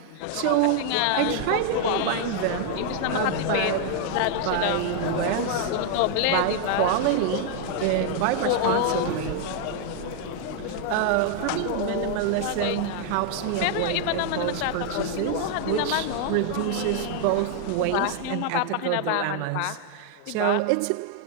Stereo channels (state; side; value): different; both; correlation 0.00